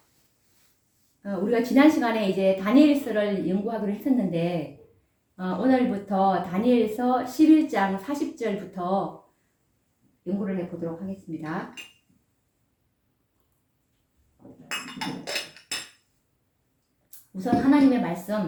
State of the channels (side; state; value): both; identical; correlation 1.00